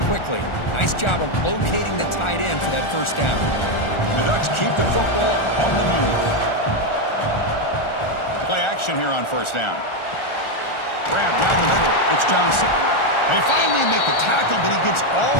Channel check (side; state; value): right; late; 1.4 ms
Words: quickly. Nice job of locating the tight end for that first down. The Ducks keep the football on the move. Play action here on first down. Grab down the middle. It's Johnson. They finally make the tackle, but he gets all